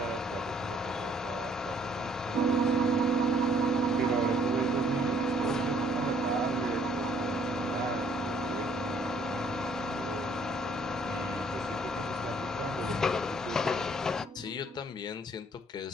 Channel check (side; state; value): both; normal; correlation 0.63